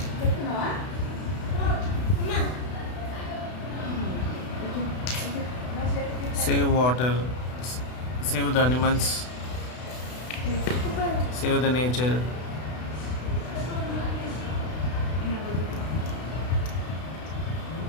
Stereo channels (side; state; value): right; late; 32 ms